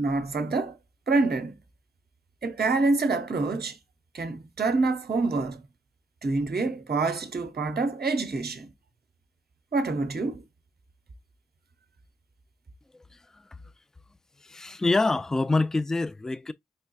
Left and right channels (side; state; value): both; normal; correlation 0.76